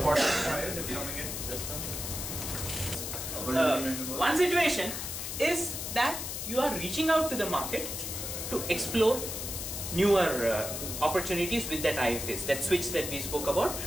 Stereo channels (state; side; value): noise; left; hiss, 5 dB below the sound